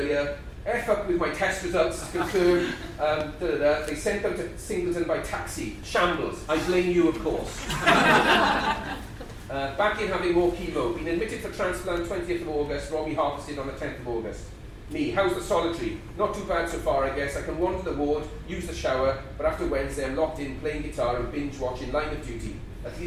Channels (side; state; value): both; identical; correlation 1.00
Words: F up with my test results, confirmed. They sent out to Singleton by taxi. Shambles. I blame you, of course. Back in having more chemo. Been admitted for transplant 20th of August. Robbie harvested on the 10th of August. Me, how's the solitary? Not too bad so far, I guess. I can wander the ward, use the shower, but after Wednesday I'm locked in, playing guitar and binge watching Line of Duty. At